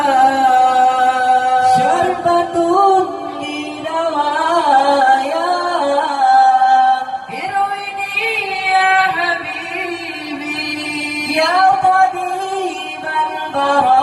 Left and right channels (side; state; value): both; identical; correlation 1.00